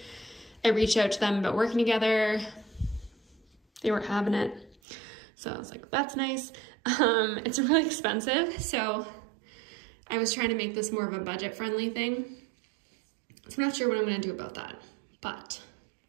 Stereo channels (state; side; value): drops out; left; at 4.8 s